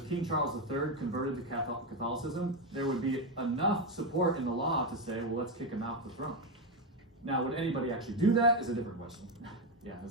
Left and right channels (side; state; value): both; normal; correlation 0.09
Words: King Charles III converted to Catholicism, there would be enough support in the law to say, well, let's kick him off the throne. Now, would anybody actually do that is a different question. Yeah,